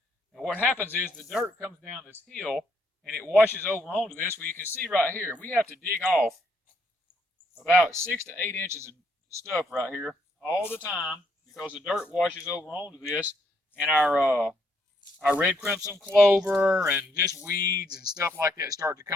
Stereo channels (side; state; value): both; normal; correlation 0.73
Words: And what happens is the dirt comes down this hill and it washes over onto this. Well, you can see right here, we have to dig off about 6 to 8 inches of stuff right here all the time because the dirt washes over onto this, and our red crimson clover and just weeds and stuff like that start to